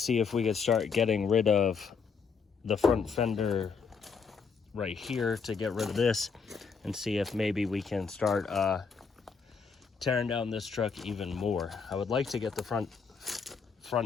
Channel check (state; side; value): quieter; right; 5.6 dB